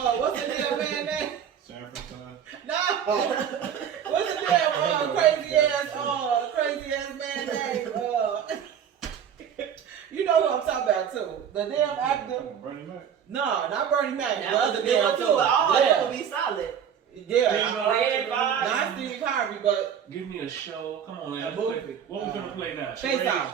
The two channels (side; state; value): left; quieter; 8.4 dB